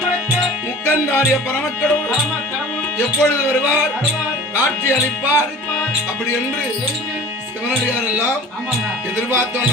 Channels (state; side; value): normal; both; correlation 0.41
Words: முக்கந்தாரிய பரமக்கடவுள் எப்பொழுது வருவார், காட்சி அளிப்பார் அப்படி என்று சிவனடியார் எல்லாம் எதிர்பார்த்த